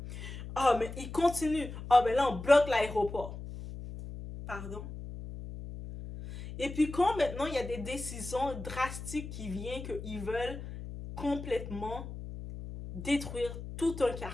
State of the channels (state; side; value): noise; left; hum, 10 dB below the sound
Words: Ah, mais il continue. Ah, mais là, on bloque l'aéroport. Pardon? Et puis quand maintenant il y a des décisions drastiques qui viennent qu'ils veulent complètement détruire tout un